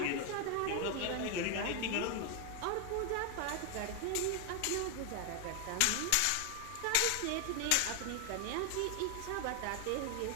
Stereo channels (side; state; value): both; different; correlation 0.01